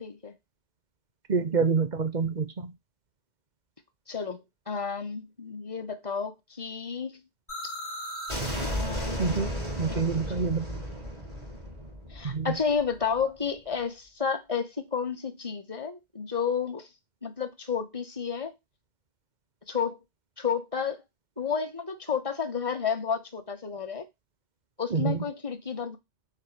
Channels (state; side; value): late; left; 2.0 ms